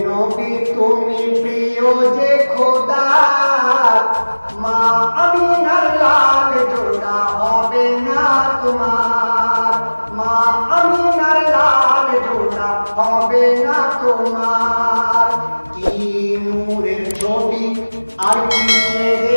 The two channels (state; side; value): inverted; both; correlation -1.00